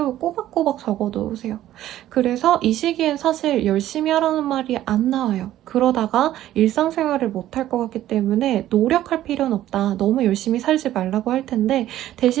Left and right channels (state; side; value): quieter; left; 13.2 dB